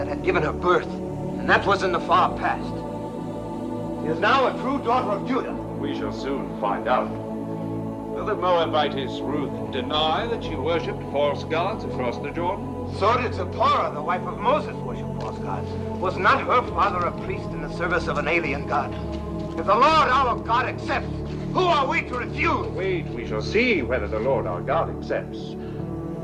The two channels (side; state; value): both; identical; correlation 1.00